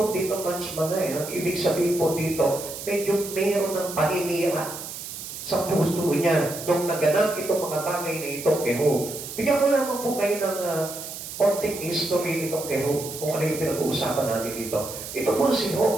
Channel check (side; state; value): right; noise; hiss, 9 dB below the sound